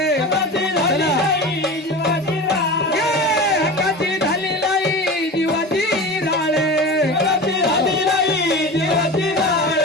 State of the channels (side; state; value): both; normal; correlation 0.31